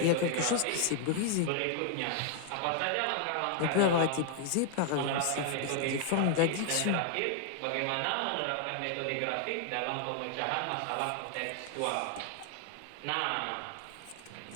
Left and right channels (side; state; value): both; different; correlation 0.00